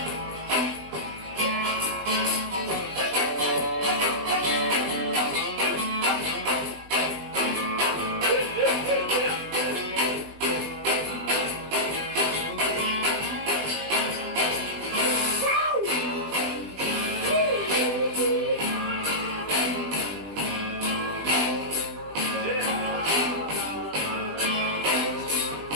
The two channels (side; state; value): left; late; 20 ms